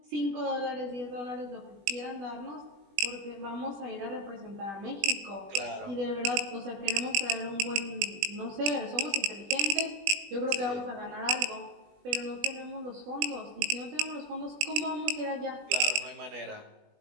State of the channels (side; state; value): left; late; 20 ms